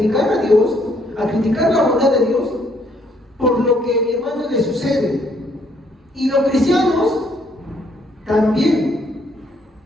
a Dios, a criticar la bondad de Dios por lo que, mi hermano, le sucede. Y los cristianos también.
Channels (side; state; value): both; normal; correlation 0.68